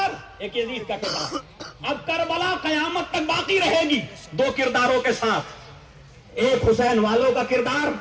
ایک یزید کا کردار. اب کربلا قیامت تک باقی رہے گی دو کرداروں کے ساتھ، ایک حسین والوں کا کردار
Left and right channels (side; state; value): both; identical; correlation 1.00